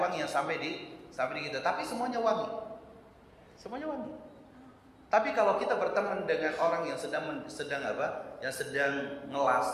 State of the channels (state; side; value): identical; both; correlation 1.00